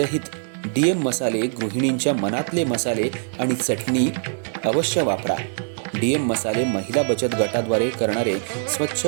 डीएम मसाले, गृहिणींच्या मनातले मसाले आणि चटणी अवश्य वापरा. डीएम मसाले महिला बचत गटाद्वारे करणारे स्वच्छ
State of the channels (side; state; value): left; silent; digital silence